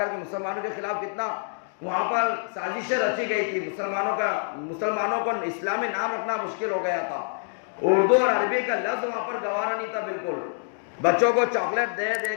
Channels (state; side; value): silent; right; digital silence